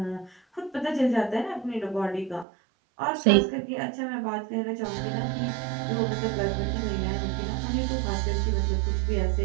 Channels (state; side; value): drops out; left; at 2.5 s